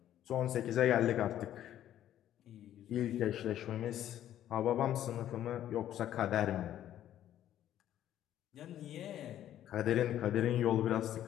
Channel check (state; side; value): quieter; right; 11.7 dB